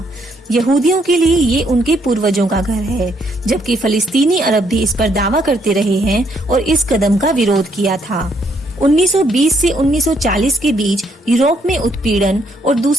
यहूदियों के लिए ये उनके पूर्वजों का घर है, जबकि फलस्तीनी अरब भी इस पर दावा करते रहे हैं और इस कदम का विरोध किया था। 1920 से 1940 के बीच यूरोप में उत्पीड़न और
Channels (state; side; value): normal; both; correlation 0.71